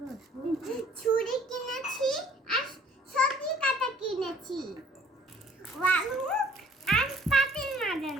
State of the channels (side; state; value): both; normal; correlation 0.56